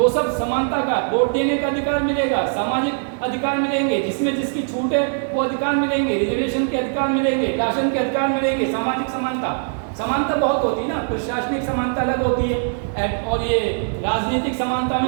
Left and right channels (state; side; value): silent; left; digital silence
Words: सब समानता का। वोट देने का अधिकार मिलेगा, सामाजिक अधिकार मिलेंगे, जिसमें जिसकी छूट है वो अधिकार मिलेंगे, रिजर्वेशन के अधिकार मिलेंगे, राशन के अधिकार मिलेंगे, सामाजिक समानता। समानता बहुत होती है ना, प्रशासनिक समानता अलग होती है, और ये राजनीतिक समानता